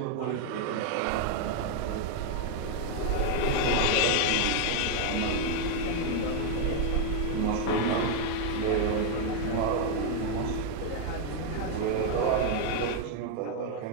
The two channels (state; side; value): different; both; correlation 0.00